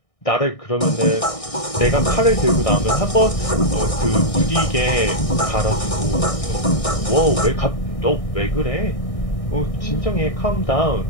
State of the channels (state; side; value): late; right; 1.6 ms